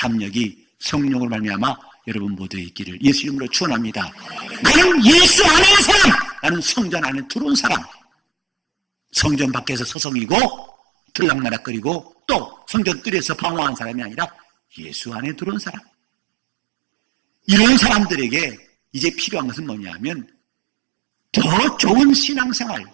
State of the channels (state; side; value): drops out; left; at 10.0 s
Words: 성령으로 말미암아 여러분 모두에 있기를 예수 이름으로 축원합니다. 나는 예수 안에 있는 사람, 나는 성전 안에 들어온 사람. 성전 밖에서 서성이고 들락날락거리고 또 성전 뜰에서 방황한 사람이 아니라 예수 안에 들어온 사람. 이런 사람들에게 이제 필요한 것은 뭐냐면 더 좋은 신앙생활,